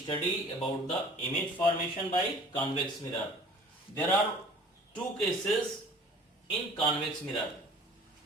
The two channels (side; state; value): both; normal; correlation 0.47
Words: about the image formation by convex mirror. There are two cases in convex mirror.